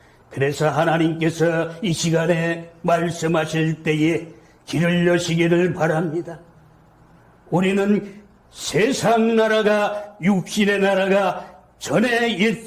그래서 하나님께서 이 시간에 말씀하실 때에 길을 여시기를 바랍니다. 우리는 세상 나라가, 육신의 나라가 전에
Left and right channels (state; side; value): identical; both; correlation 1.00